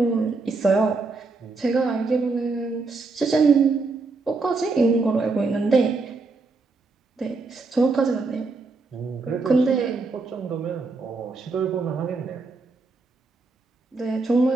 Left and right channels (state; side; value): quieter; left; 3.9 dB